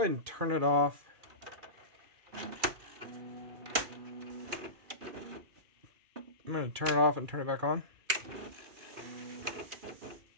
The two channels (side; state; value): left; late; 2.4 ms